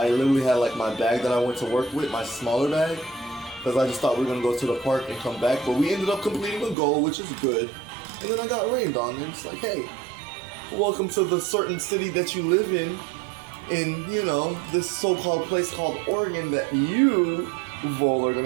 literally had like my bag that I went to work with, my smaller bag, because I just thought we were gonna go to the park and come back, but we ended up completing a goal, which is good. And then I got rained on, and it's like, hey, welcome to the certain city that you live in, you know, this so-called place called Oregon that you, VoL, are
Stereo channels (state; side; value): drops out; left; at 6.8 s